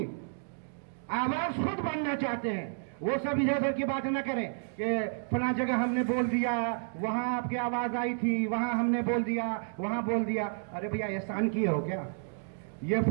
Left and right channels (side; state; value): left; silent; digital silence